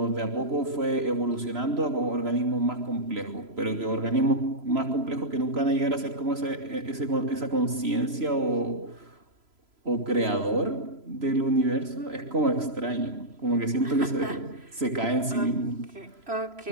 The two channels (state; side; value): late; left; 3.0 ms